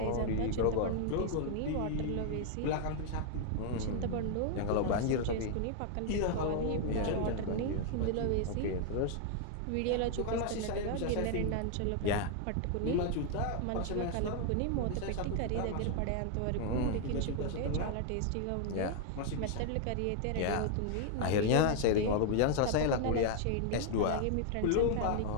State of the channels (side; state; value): both; different; correlation 0.00